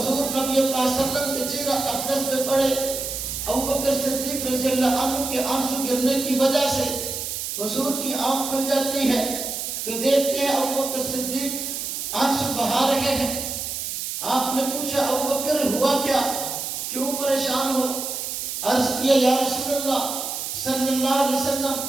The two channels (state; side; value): noise; right; hiss, 4 dB below the sound